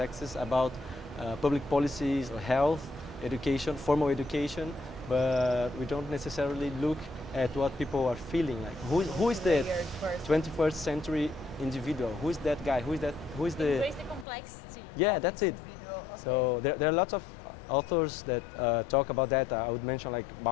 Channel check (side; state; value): right; drops out; at 14.2 s